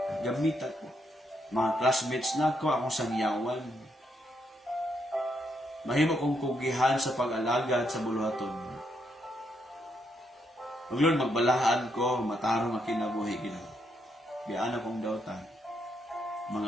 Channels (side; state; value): both; normal; correlation 0.77